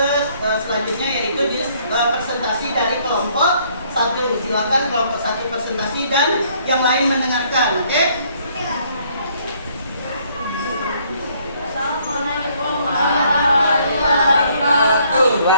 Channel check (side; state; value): both; inverted; correlation -0.65